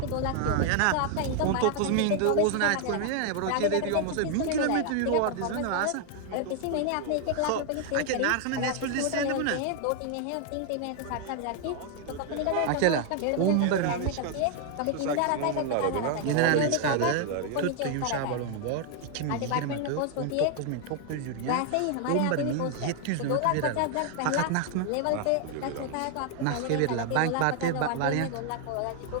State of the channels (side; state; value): both; different; correlation 0.00